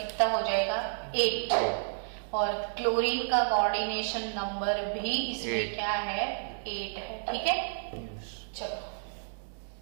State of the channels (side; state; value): left; silent; digital silence